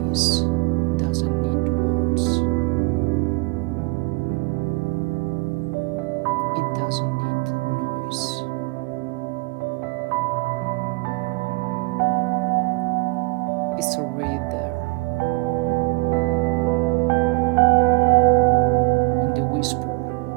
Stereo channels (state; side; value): quieter; left; 26.9 dB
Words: doesn't need words. It doesn't need noise. It's already there, in the whisper